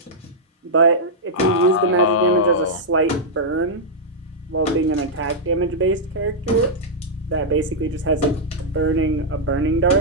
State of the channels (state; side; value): normal; both; correlation -0.08